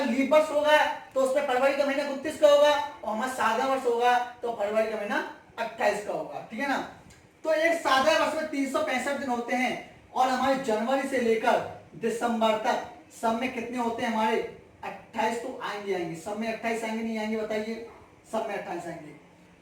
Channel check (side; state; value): both; identical; correlation 1.00